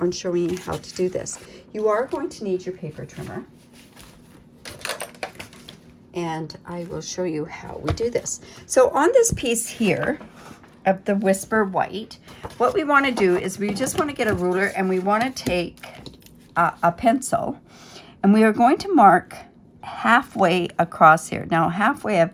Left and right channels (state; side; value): identical; both; correlation 1.00